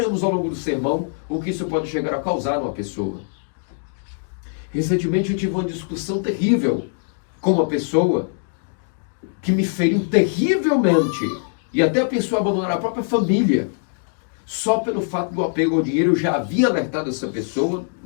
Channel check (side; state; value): right; silent; digital silence